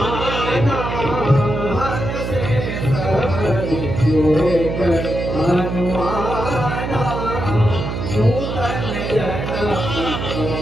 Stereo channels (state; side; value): noise; right; hum, 4 dB below the sound